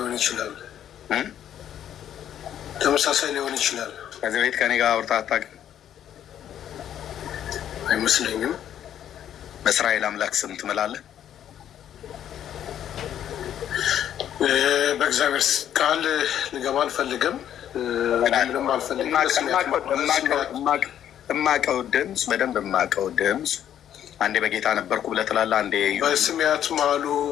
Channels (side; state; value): right; quieter; 10.4 dB